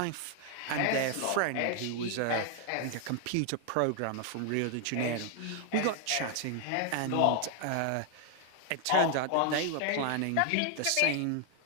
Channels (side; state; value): both; different; correlation 0.00